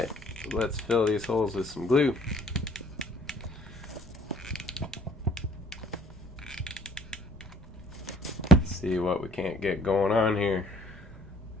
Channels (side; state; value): both; normal; correlation 0.56